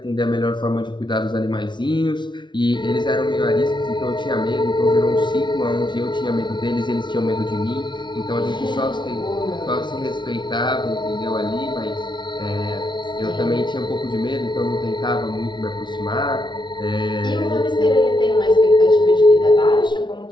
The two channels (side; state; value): right; late; 0.23 ms